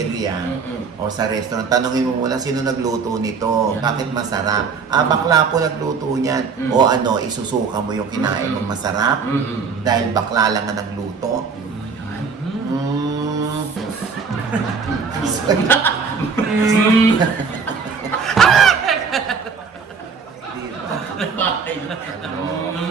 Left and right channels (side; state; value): left; quieter; 5.3 dB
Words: o sa restaurant, tanongin mo muna sino nagluto nito, bakit masarap? Ah, bakla po nagluto niyan. O ano, isusuka mo yung kinain mong masarap dahil bakla lang ang nagluto.